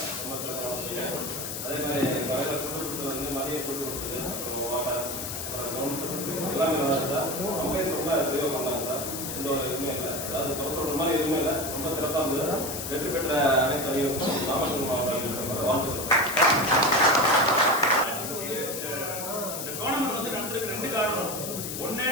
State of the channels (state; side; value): noise; left; hiss, 6 dB below the sound